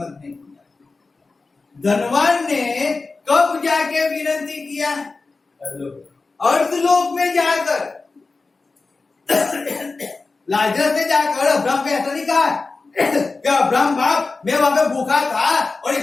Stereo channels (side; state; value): right; quieter; 3.9 dB